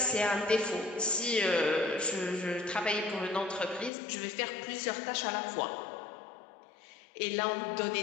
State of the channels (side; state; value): right; drops out; at 3.9 s